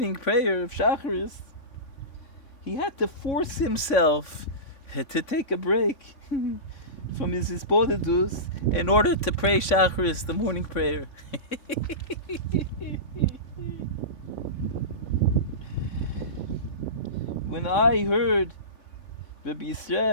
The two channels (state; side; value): late; right; 3.6 ms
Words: prayer of Shacharis, he had to force himself to take a break from his Sporidus in order to pray Shacharis, the morning prayer. When I heard Rabbi